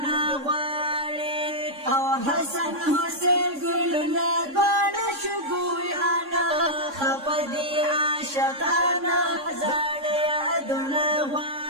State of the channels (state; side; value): late; left; 3.6 ms